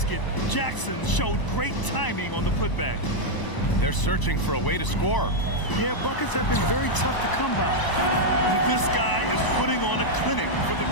Jackson showed great timing on the putback. They're searching for a way to score. Yeah, buckets have been very tough to come by. This guy is putting on a clinic for the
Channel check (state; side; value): late; right; 1.0 ms